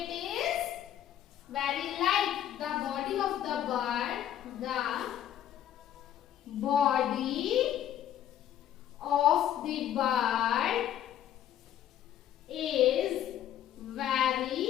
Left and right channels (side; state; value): right; quieter; 11.1 dB